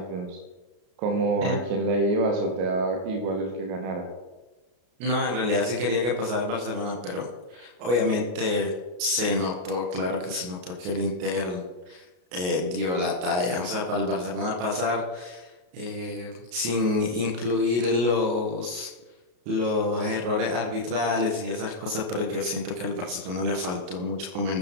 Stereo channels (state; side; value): late; left; 33 ms